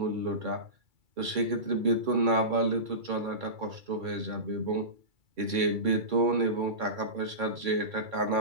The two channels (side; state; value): left; late; 2.3 ms